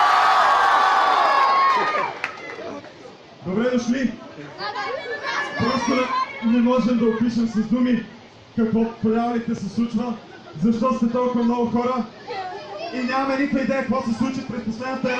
Добре дошли! Просто не можем да опишем с думи какво по реалите се случва, защо сте толкова много хора и нямаме никаква идея какво се случи през последната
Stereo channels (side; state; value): both; identical; correlation 1.00